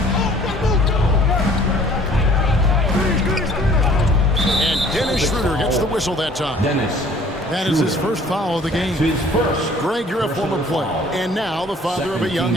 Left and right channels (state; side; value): normal; both; correlation 0.54